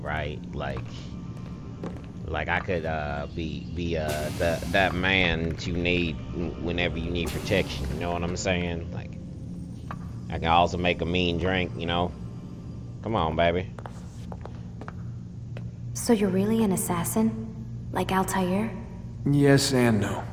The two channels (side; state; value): both; identical; correlation 1.00